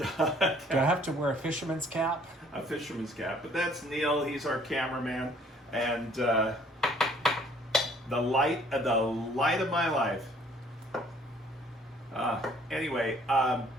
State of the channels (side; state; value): both; normal; correlation 0.58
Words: I have to wear a fisherman's cap? A fisherman's cap. But that's Neil. He's our cameraman. And the light of my life. Anyway, I